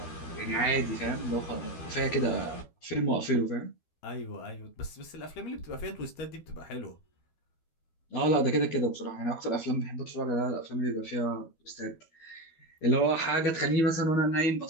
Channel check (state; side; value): late; right; 12 ms